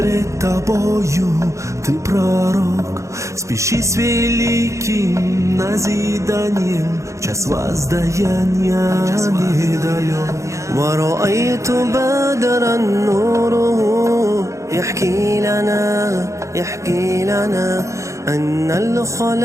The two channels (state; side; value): late; left; 0.15 ms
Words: тобою, ты пророк. Спеши с великим назиданием, час воздаяния недалек. ورأيت بدرا نوره يحكي لنا أن